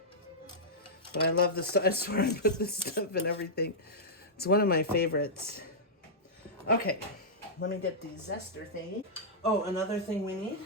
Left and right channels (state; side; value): normal; both; correlation -0.11